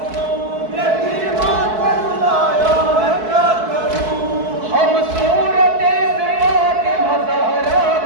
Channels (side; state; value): left; late; 4.6 ms